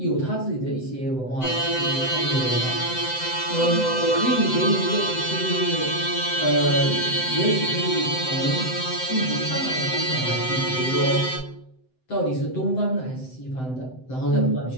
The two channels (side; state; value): right; late; 7.8 ms